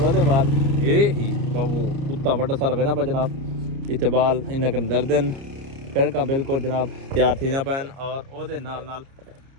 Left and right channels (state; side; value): late; left; 30 ms